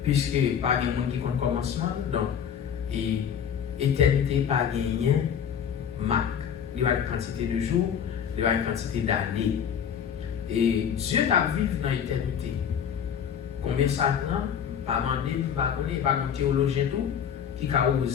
Puisque pas de monde qui connaît le commencement, donc, et éternité, pas gagné, marque. Il y a une quantité de jours, il y a une quantité d'années. Et Dieu t'a vécu dans l'éternité. Combien ça prend? Pas demander, pas connaître, pas un théologien tout, qui a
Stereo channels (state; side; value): quieter; right; 8.1 dB